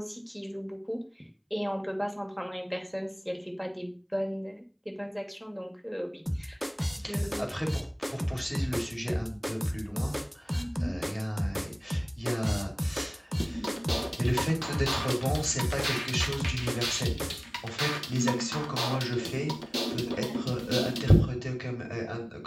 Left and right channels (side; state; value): both; identical; correlation 1.00